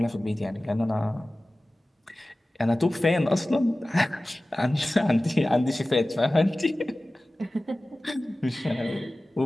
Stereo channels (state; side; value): normal; both; correlation 0.97